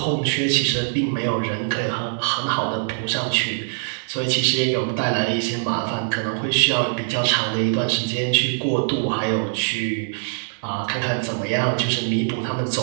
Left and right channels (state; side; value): silent; left; 64 dB below the other